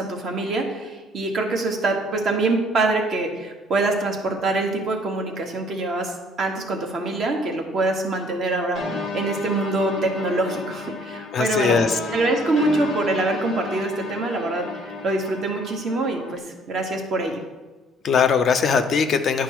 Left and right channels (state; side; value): normal; both; correlation 0.58